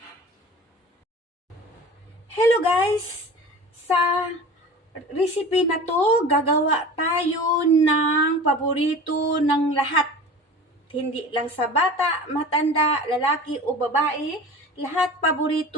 Hello guys! Sa recipe na to, gagawa tayo ng paborito ng lahat. Hindi lang sa bata, matanda, lalaki o babae, lahat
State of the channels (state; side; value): normal; both; correlation 0.38